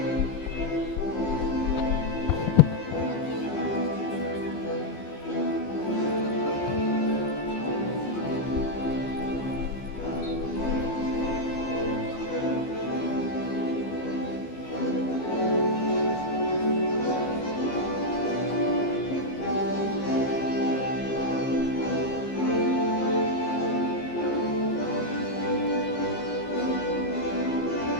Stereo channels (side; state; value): right; late; 15 ms